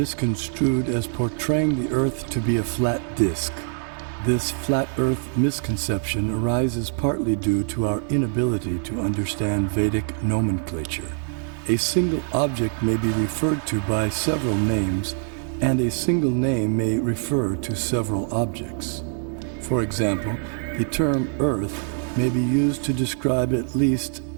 as portraying the earth to be a flat disk. This flat earth misconception arises partly due to our inability to understand Vedic nomenclature. A single object may be referred to by several names, and a single name may refer to several objects. For example, the term earth may be used to describe at least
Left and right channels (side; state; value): left; silent; 58 dB below the other